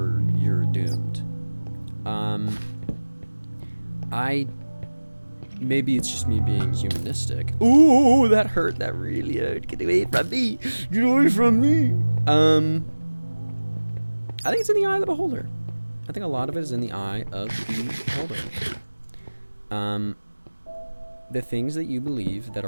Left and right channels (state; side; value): inverted; both; correlation -1.00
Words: doomed. Maybe it's just me being humanistic. Ooh, that hurt. That really hurt. Get away from me. Get away from me. I think it's in the eye of the beholder. I think a lot of it is in the eye of the beholder. The things that you believe that